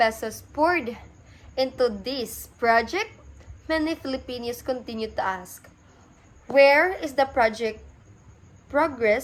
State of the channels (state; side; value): identical; both; correlation 1.00